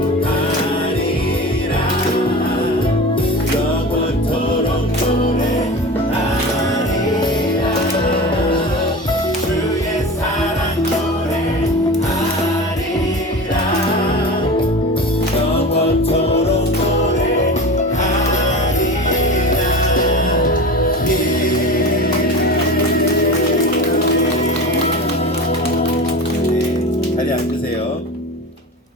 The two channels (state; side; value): normal; both; correlation 0.31